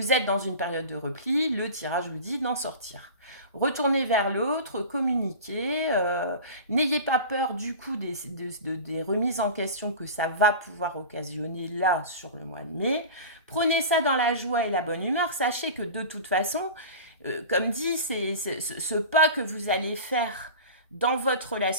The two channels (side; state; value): both; inverted; correlation -0.33